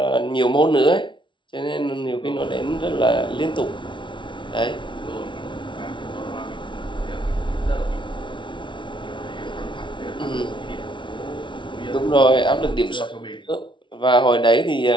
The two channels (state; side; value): late; right; 0.24 ms